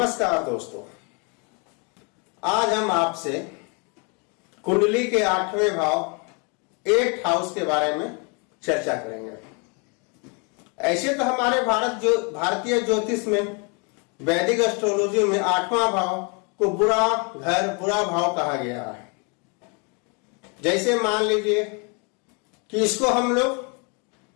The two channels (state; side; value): quieter; right; 34.1 dB